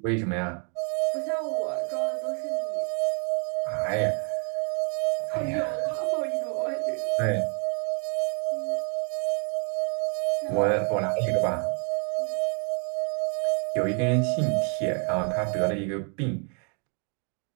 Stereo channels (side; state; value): left; quieter; 39.8 dB